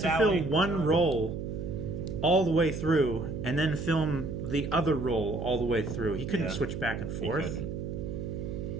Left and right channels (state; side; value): noise; right; hum, 5 dB below the sound